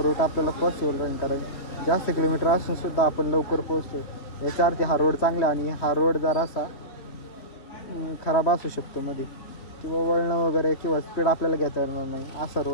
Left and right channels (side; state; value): right; late; 3.2 ms